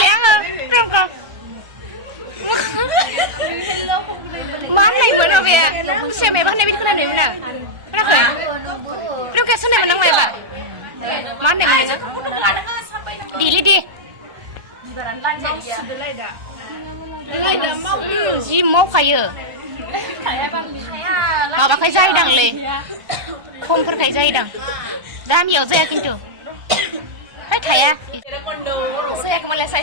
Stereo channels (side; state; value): left; late; 1.3 ms